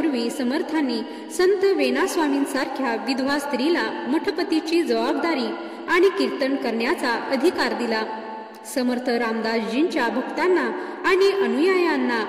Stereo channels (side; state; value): both; identical; correlation 1.00